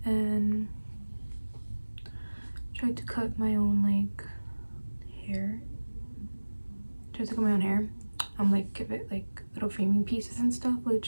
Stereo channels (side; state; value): both; inverted; correlation -1.00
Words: and tried to cut my own like hair. Tried to cut my own hair. Like give it like little framing pieces and stuff,